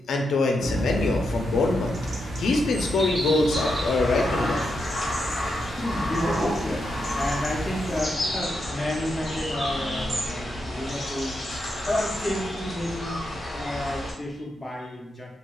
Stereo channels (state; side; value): normal; both; correlation 0.84